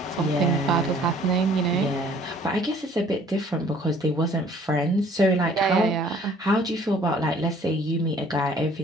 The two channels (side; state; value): both; normal; correlation 0.56